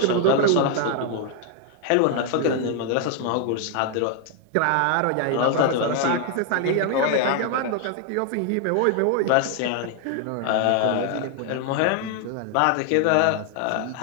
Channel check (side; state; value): both; different; correlation 0.00